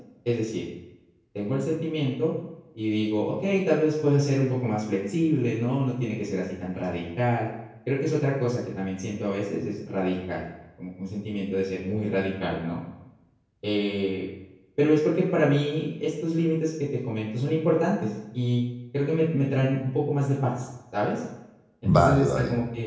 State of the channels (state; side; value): identical; both; correlation 1.00